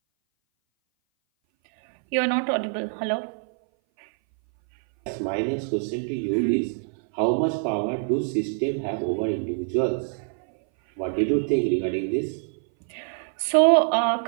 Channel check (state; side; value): silent; left; 59 dB below the other